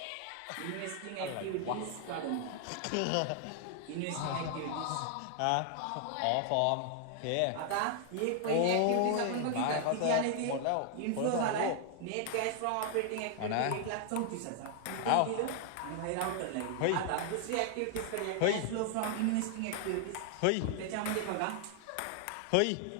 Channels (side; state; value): both; different; correlation 0.00